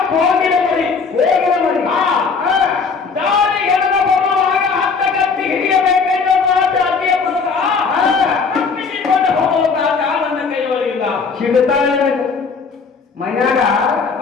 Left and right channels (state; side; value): quieter; right; 5.1 dB